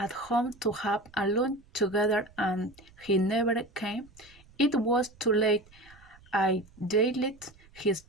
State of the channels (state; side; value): noise; right; rumble, 26 dB below the sound